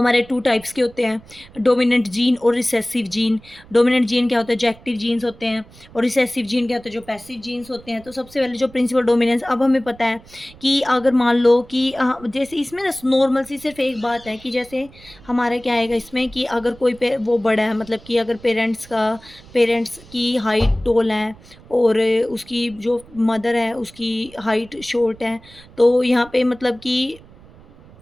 2 टाइप्स के होते हैं, डोमिनेंट जीन और रिसेसिव जीन। डोमिनेंट जीन क्या होता है, जो एक्टिव जीन्स होते हैं, और रिसेसिव जीन क्या होता है, जो पैसिव जीन्स होते हैं। तो सबसे पहले जो प्रिंसिपल डोमिनेंस, अब हमें पता है कि अगर मान लो कि जैसे इसमें ना नॉर्मल सी सिर्फ एक बात है कि जैसे हमारा क्या आएगा इसमें, कि अगर कोई वो बड़ा है, मतलब कि अगर पेरेंट्स की हाइट टॉल है, और उसकी जो मदर है उसकी हाइट शॉर्ट है, तो यहाँ पे मतलब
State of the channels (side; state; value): right; noise; rumble, 23 dB below the sound